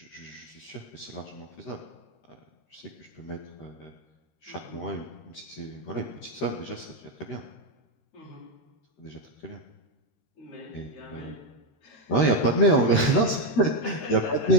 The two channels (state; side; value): late; right; 13 ms